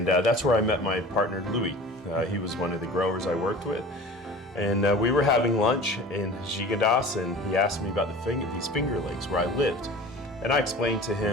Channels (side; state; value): both; normal; correlation 0.40